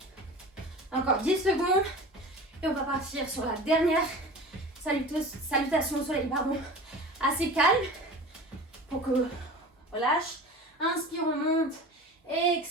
Encore 10 secondes. Et on va partir sur la dernière salutation au soleil, pardon. Assez calme. Pour que on lâche. Inspire, on monte.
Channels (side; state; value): both; normal; correlation 0.37